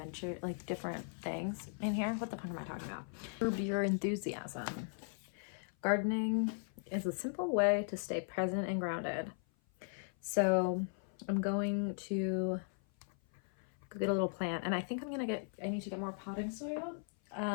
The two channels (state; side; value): silent; right; 53 dB below the other